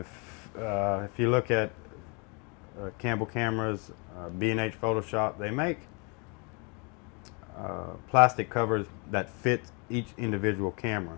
you look at Campbell cameras, B&H Photoshop, they make plastic covers that fit each individual camera.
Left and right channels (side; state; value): right; quieter; 32.8 dB